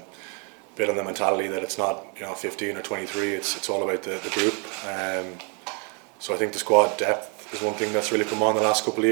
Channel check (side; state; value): left; quieter; 36.8 dB